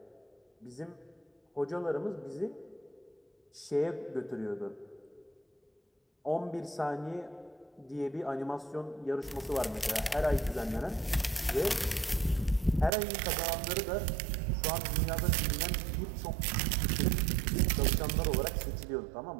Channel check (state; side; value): drops out; left; at 12.9 s